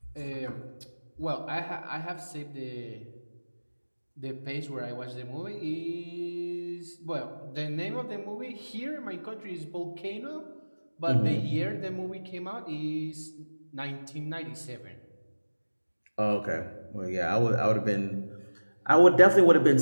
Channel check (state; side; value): inverted; both; correlation -1.00